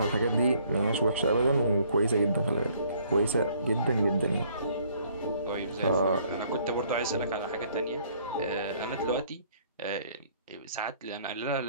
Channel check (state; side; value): inverted; both; correlation -0.62